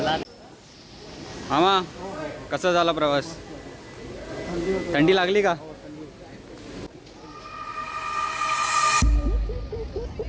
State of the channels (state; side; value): identical; both; correlation 1.00